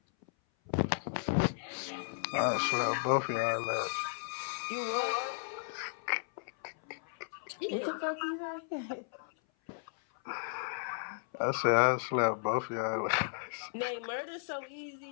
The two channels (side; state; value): right; silent; 55 dB below the other